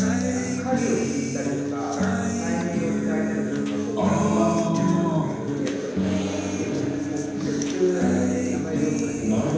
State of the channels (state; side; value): identical; both; correlation 1.00